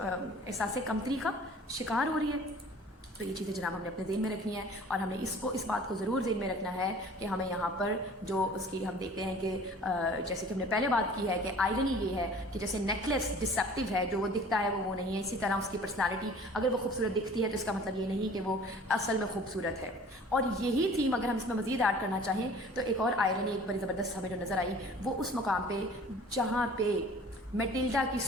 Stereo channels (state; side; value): normal; both; correlation 0.48